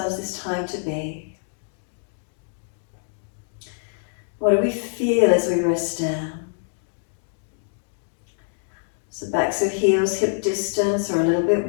this time to be. What do we feel as we rest down? So backs of heels hip distance or a little bit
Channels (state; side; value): silent; right; digital silence